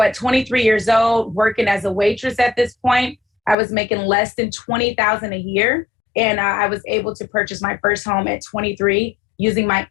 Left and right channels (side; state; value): right; drops out; at 3.6 s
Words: at 23 years old, working as a waitress at this point, I was making less than 20,000 a year. And I was able to purchase my first home at 23 using my